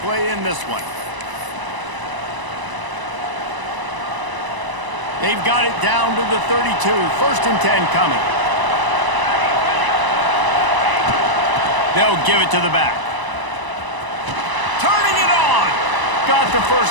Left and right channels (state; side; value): late; left; 1.0 ms